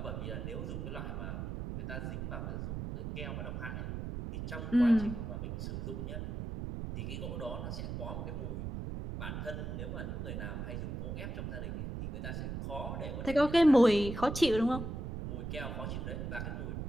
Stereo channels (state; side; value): noise; right; rumble, 5 dB below the sound